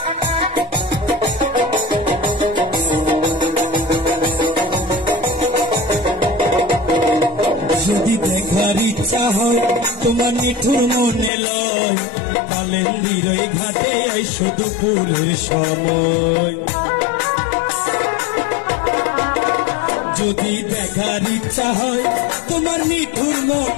যদি দেখার ইচ্ছা হয় তোমার নিঠুর মনে লয় কালেন্দির ঘাটে আইসো দুপুরের সময় যদি দেখার ইচ্ছা হয় তোমার নিঠুর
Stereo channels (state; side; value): drops out; right; at 11.3 s